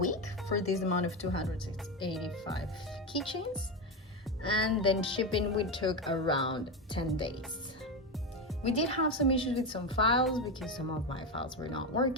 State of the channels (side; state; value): both; normal; correlation 0.14